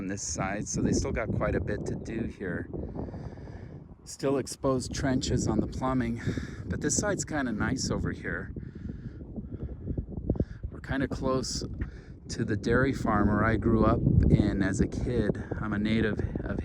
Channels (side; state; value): both; identical; correlation 1.00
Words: this side, so they still got quite a bit to do here. Still exposed trenches on the plumbing, but this side's kind of nice over here. We're kind of close to the dairy farm where I grew up in as a kid. I'm a native of